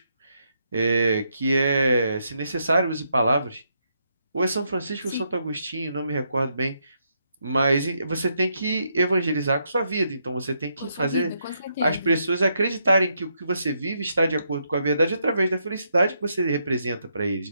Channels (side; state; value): both; inverted; correlation -0.78